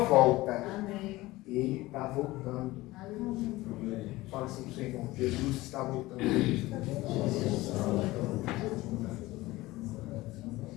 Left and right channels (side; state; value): right; quieter; 19.0 dB